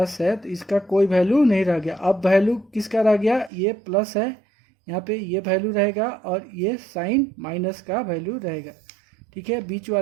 है तो इसका कोई वैल्यू नहीं रह गया। अब वैल्यू किसका रह गया, ये प्लस है, यहाँ पे ये वैल्यू रहेगा, और ये साइन माइनस का वैल्यू रहेगा, ठीक है, बीच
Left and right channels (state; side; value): drops out; left; at 3.5 s